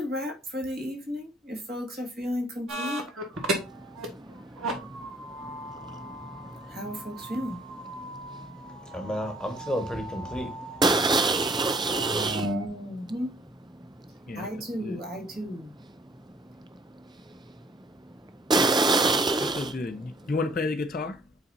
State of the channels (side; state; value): both; normal; correlation 0.60